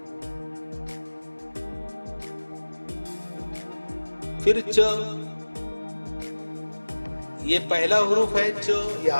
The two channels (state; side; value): inverted; both; correlation -1.00